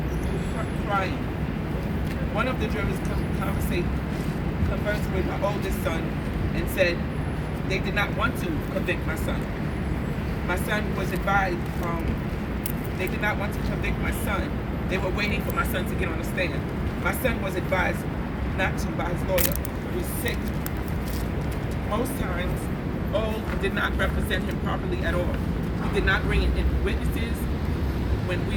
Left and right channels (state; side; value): identical; both; correlation 1.00